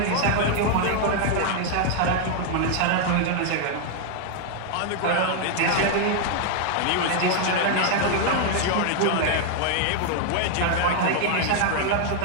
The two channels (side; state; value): both; different; correlation 0.00